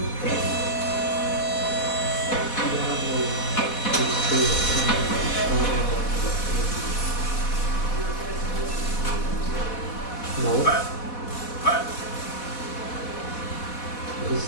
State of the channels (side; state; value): right; late; 4.1 ms